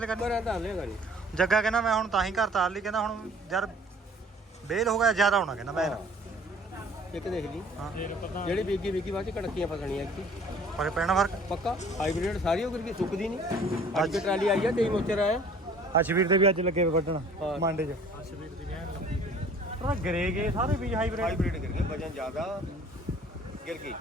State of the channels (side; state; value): both; normal; correlation 0.52